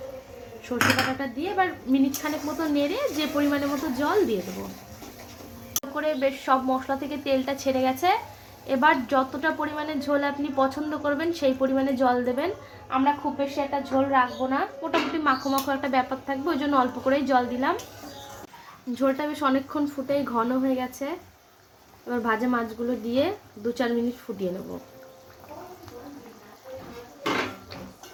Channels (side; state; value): both; identical; correlation 1.00